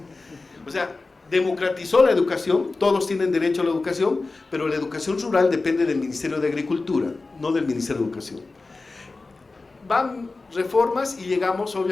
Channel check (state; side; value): quieter; right; 3.6 dB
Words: O sea, democratizó la educación, todos tienen derecho a la educación, pero la educación rural depende del Ministerio de Agricultura, no del Ministerio de Educación. Van reformas y llegamos